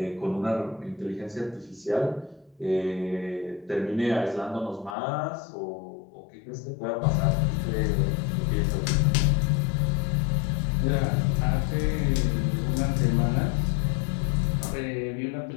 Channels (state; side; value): drops out; right; at 5.0 s